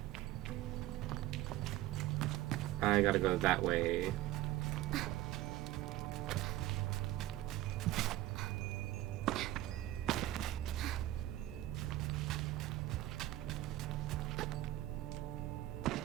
I gotta go that way.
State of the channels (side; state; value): left; quieter; 15.2 dB